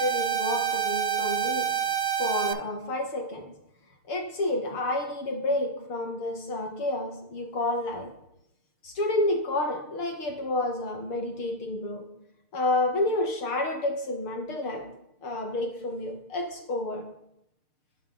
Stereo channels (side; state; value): right; late; 6.6 ms